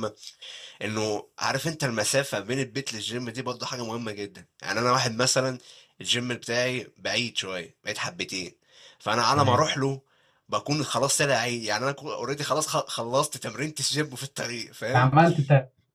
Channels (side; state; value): both; identical; correlation 1.00